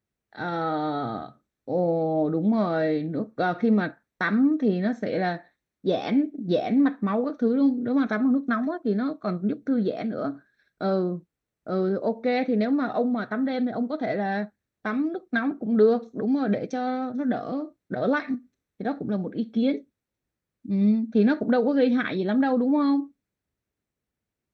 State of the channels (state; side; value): identical; both; correlation 1.00